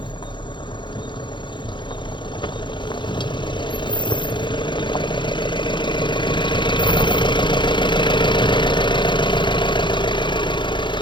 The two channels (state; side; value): late; right; 0.23 ms